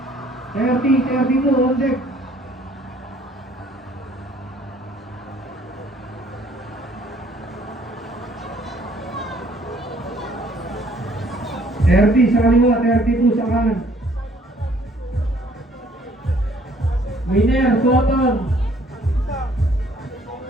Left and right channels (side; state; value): both; normal; correlation 0.60